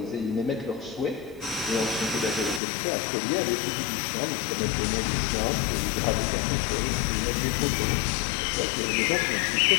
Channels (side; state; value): right; drops out; at 2.6 s